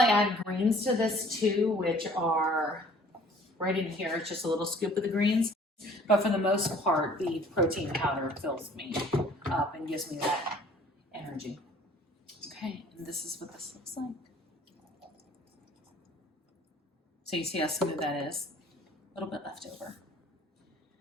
I add greens to this too, which are right in here. It's just a little scoop of the greens. But for the most part, the protein powder fills me up and gives me that energy. Okay, and this is what this looks like. So you see how smooth that is? A little bit left over.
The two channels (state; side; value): normal; both; correlation 0.54